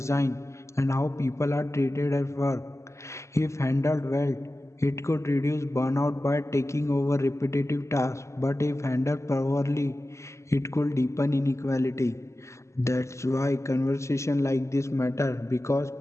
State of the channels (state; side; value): late; right; 0.14 ms